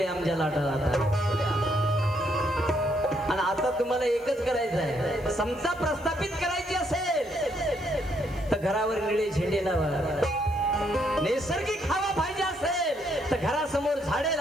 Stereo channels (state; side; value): noise; left; hiss, 26 dB below the sound